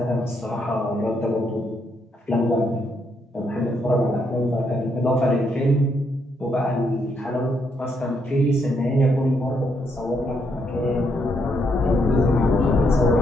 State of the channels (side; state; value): both; normal; correlation 0.76